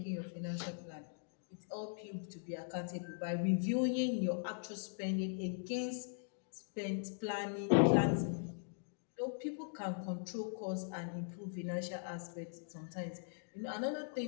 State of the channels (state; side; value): silent; right; digital silence